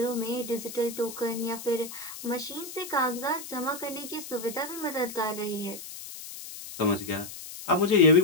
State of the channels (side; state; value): left; noise; hiss, 12 dB below the sound